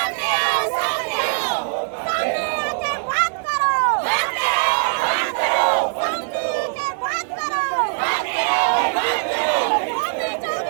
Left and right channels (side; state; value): left; silent; digital silence